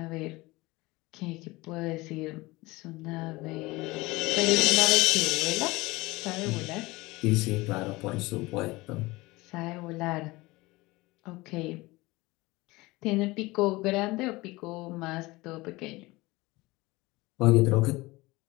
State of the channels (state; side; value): quieter; right; 21.4 dB